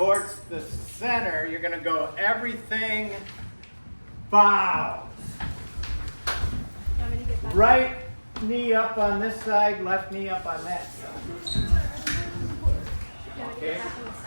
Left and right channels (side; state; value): both; inverted; correlation -1.00